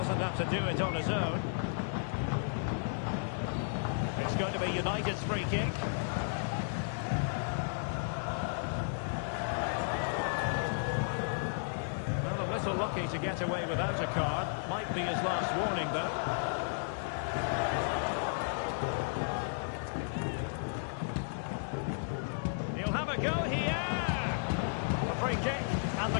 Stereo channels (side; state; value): right; silent; digital silence